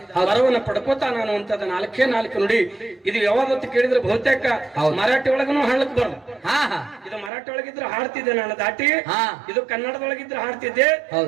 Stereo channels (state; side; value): drops out; left; at 7.3 s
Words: ವರವನ್ನು ಪಡ್ಕೋತಾನ ಅನ್ನುವಂಥದ್ದು 4 ನುಡಿ. ಇದು ಯಾವ್ದತ್ತು ಕೇಳಿದ್ರೆ ಬಹುತೇಕ ಮರಾಠಿ ಒಳಗನು ಹಾಡ್ಲಿಕ್ ಬರಲ್ಲ. ಇದು ಮರಾಠಿ ಒಳಗಿದ್ರೆ ಹಾಡ್ತಿದ್ದೆ ನಾನು ದಾಟಿ, ಇದು ಕನ್ನಡದೊಳಗಿದ್ರೆ ಹಾಡ್ತಿದ್ದೆ,